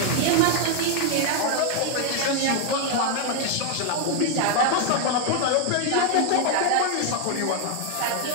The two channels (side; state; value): both; different; correlation 0.00